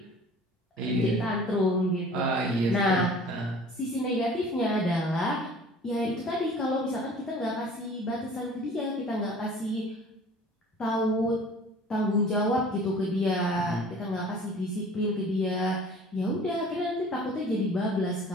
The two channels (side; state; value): both; normal; correlation 0.47